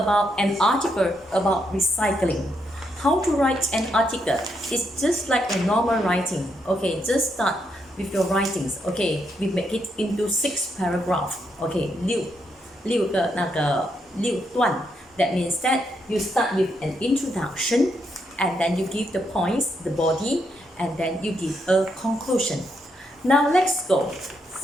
an article about recycling. How to write an article is just like a normal writing. Okay, just start with your writings. Okay, we make it into 6 paragraphs. Okay, 6段. That means that you start with an introduction and then you give the points, the body, and then you give a conclusion. Now let's go.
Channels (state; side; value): normal; both; correlation 0.79